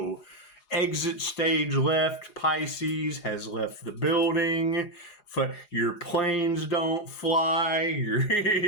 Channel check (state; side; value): late; right; 4.8 ms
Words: Exit stage left. Pisces has left the building. Your planes don't fly.